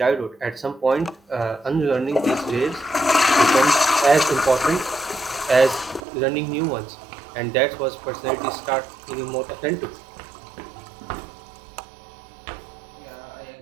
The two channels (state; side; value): drops out; left; at 6.0 s